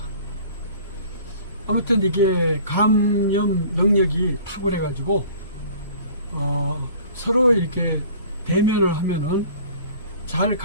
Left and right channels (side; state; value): both; inverted; correlation -0.48